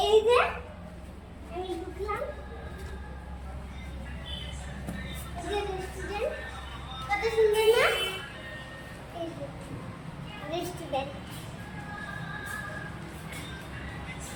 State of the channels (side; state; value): both; identical; correlation 1.00